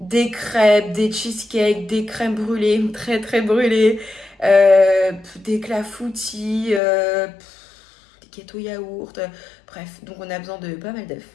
crêpes, des cheesecakes, des crèmes brûlées, très très brûlées, des clafoutis, des gâteaux yaourt, bref, donc on a besoin de pas mal d'œufs.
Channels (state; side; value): drops out; right; at 6.8 s